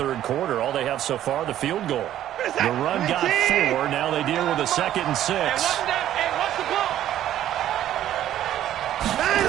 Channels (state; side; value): quieter; left; 12.0 dB